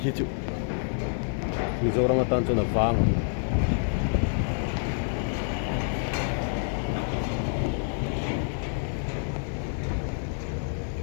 hít chịu mình giờ đang tan cho nó vàng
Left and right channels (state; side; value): silent; right; digital silence